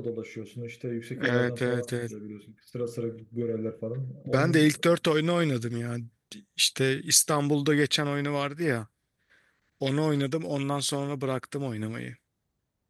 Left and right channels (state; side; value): identical; both; correlation 1.00